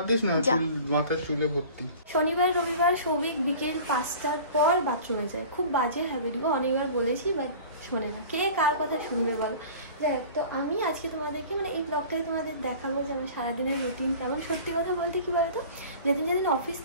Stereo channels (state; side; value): inverted; both; correlation -0.41